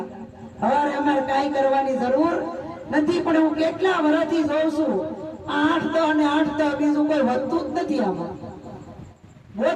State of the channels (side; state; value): both; identical; correlation 1.00